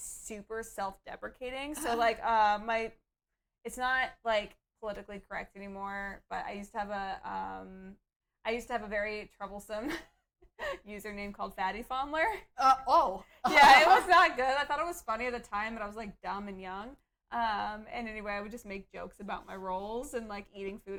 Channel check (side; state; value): both; identical; correlation 1.00